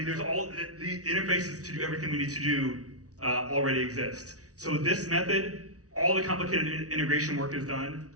there's all the interfaces to do everything we need to do already exist. So this method, all the complicated integration work is done.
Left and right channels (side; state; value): left; late; 0.67 ms